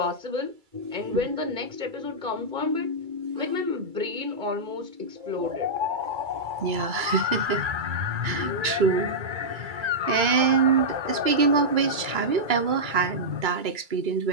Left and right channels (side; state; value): left; late; 2.3 ms